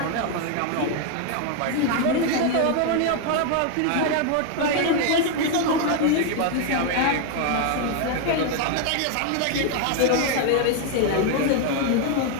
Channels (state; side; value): different; both; correlation 0.01